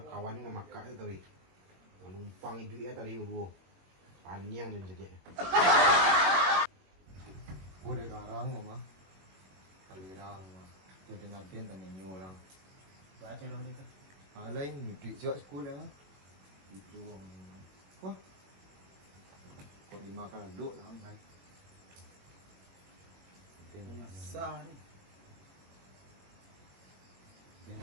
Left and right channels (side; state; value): left; late; 21 ms